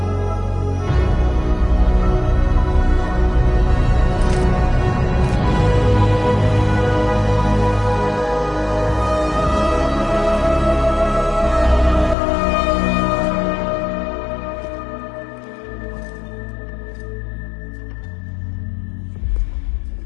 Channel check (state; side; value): drops out; right; at 12.2 s